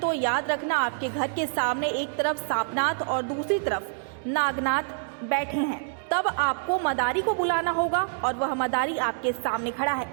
याद रखना, आपके घर के सामने एक तरफ सांपनाथ और दूसरी तरफ नागनाथ बैठे हैं। तब आपको मदारी को बुलाना होगा और वह मदारी आपके सामने खड़ा है,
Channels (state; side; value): silent; left; digital silence